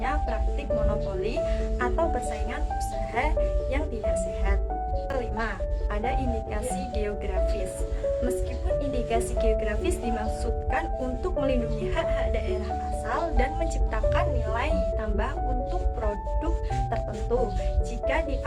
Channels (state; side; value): identical; both; correlation 1.00